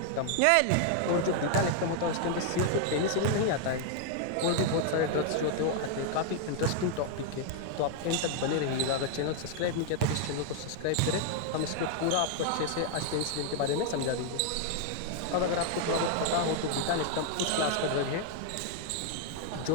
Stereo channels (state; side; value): different; both; correlation 0.00